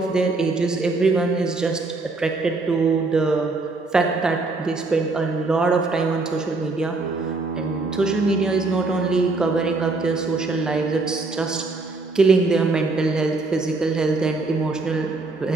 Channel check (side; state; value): left; quieter; 3.5 dB